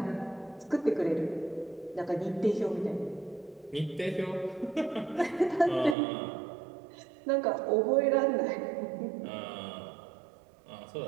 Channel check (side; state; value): left; drops out; at 6.0 s